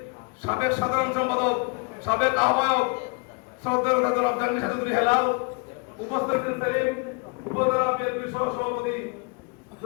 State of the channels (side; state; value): right; quieter; 31.9 dB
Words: সাবেক সাধারণ সম্পাদক, সাবেক আহ্বায়ক শ্রদ্ধেয় জনাব জাহাঙ্গীর চৌধুরী হেলাল, উপস্থিত সেলিম উপজেলা বিএনপির সহ সভাপতি